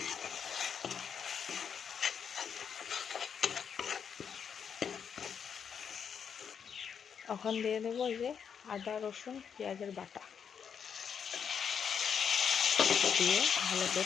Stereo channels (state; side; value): quieter; right; 7.3 dB